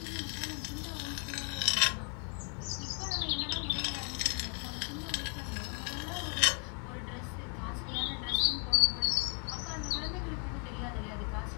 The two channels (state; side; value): quieter; right; 38.3 dB